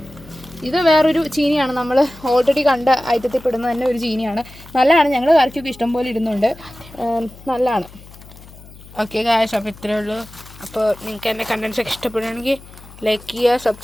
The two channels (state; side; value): noise; left; hum, 20 dB below the sound